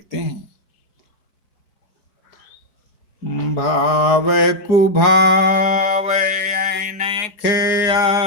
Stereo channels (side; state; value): right; late; 4.5 ms